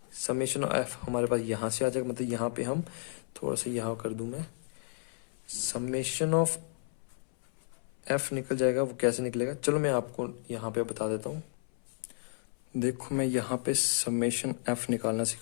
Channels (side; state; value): right; silent; 56 dB below the other